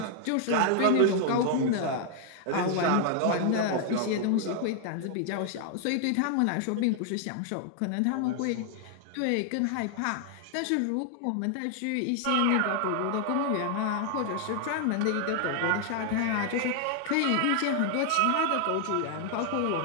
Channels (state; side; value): different; both; correlation 0.00